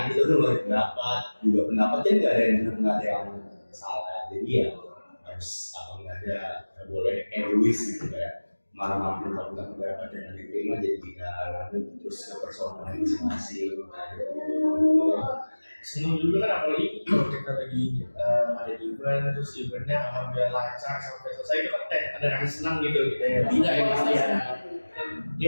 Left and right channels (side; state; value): both; inverted; correlation -1.00